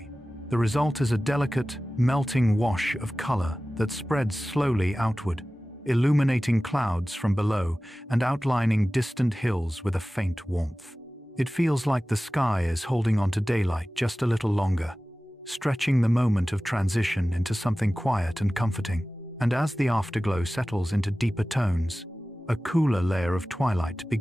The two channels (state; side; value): normal; both; correlation 0.96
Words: The result is a delicate, melting wash of color that spreads slowly outward, illuminating clouds from below and outlining distant hills with a faint warmth. It feels like the sky is holding on to daylight just a little longer, stretching the moment of transition into something quiet and comforting. And as the afterglow settles into deeper tones, a cooler layer of twilight